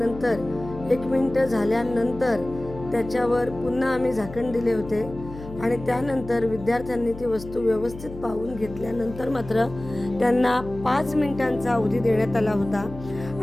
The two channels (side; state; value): left; noise; hum, 14 dB below the sound